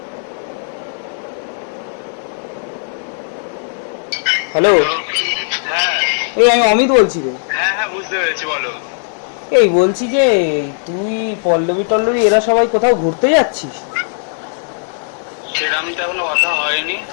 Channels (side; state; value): right; silent; 65 dB below the other